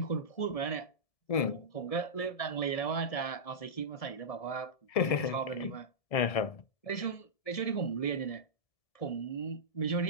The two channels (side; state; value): right; late; 1.7 ms